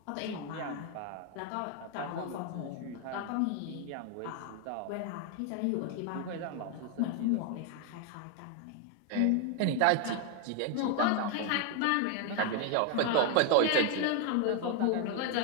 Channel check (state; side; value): different; both; correlation 0.01